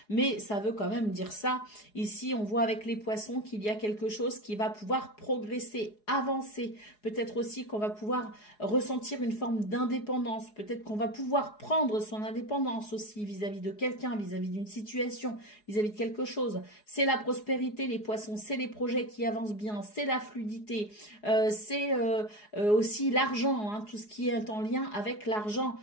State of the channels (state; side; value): late; right; 4.8 ms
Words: mais ça veut quand même dire ça. Ici, on voit avec les poissons qu'il y a quelque chose qui va pouvoir progresser, avancer. Peut-être aussi qu'on va pouvoir ressentir une forme d'indépendance. Peut-être qu'on va pouvoir prendre son indépendance aussi vis-à-vis de quelqu'un, vis-à-vis d'une situation, vis-à-vis de quelque chose. C'est la prospérité, les poissons, c'est les projets qui avance bien, c'est la fluidité, c'est aussi l'argent, hein, tout ce qui est en lien avec l'argent.